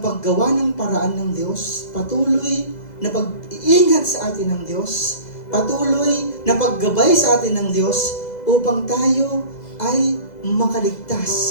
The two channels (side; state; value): right; late; 2.0 ms